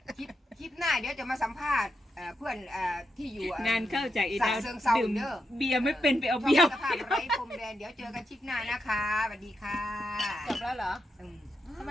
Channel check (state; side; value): normal; both; correlation 0.84